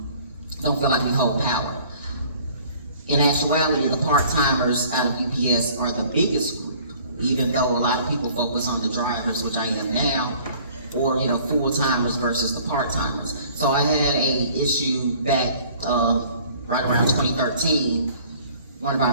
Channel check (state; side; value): inverted; both; correlation -0.53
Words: don't feel like we hold power. In actuality, the part-timers out of UPS are the biggest group, even though a lot of people focus on the drivers, which I am now, or full-timers versus the part-timers. So I had a issue back right around 2013. One of